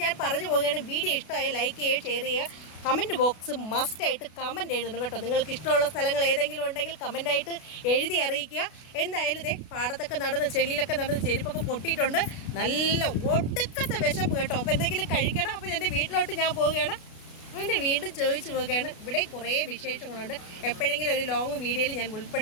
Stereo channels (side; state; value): right; late; 32 ms